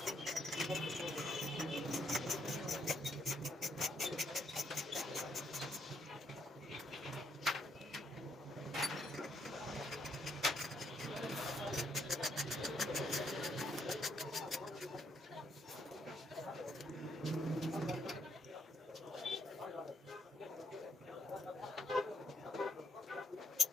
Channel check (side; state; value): both; normal; correlation 0.72